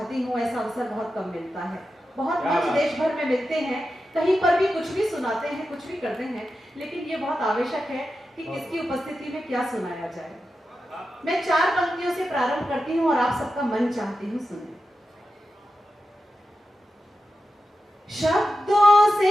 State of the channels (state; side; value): normal; both; correlation 0.91